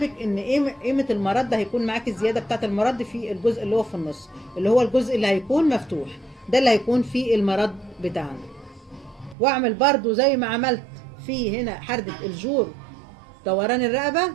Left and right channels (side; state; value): left; drops out; at 9.3 s